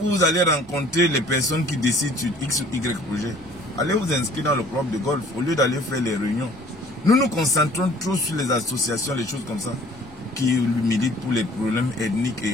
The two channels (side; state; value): both; normal; correlation 0.53